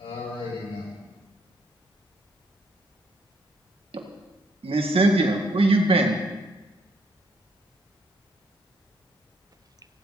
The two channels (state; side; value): normal; both; correlation 0.70